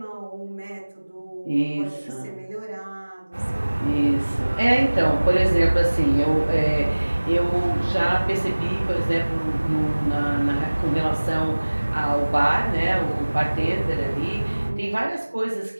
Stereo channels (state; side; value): inverted; both; correlation -1.00